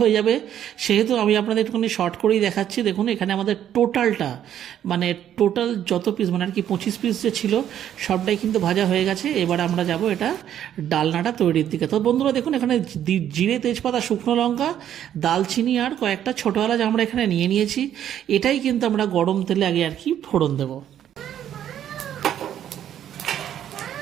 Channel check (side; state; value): left; quieter; 10.5 dB